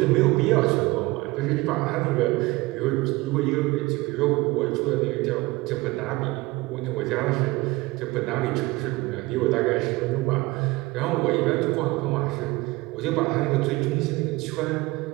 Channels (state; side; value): quieter; left; 21.6 dB